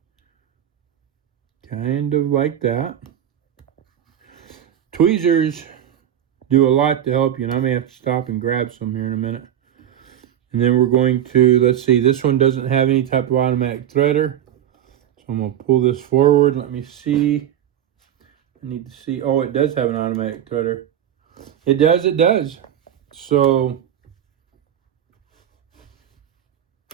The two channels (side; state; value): left; quieter; 10.5 dB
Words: Kind of like that. Tweezers do a lot to help you, and I may have to stop and grab some here in a minute. And then we're going to, let's see, this one doesn't have any type of automatic threader. So I'm going to pull this forward. Let me see. I need to see. Oh, it does have an automatic threader. It does. So,